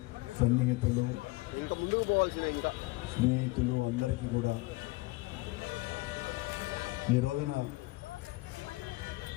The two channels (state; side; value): quieter; right; 22.6 dB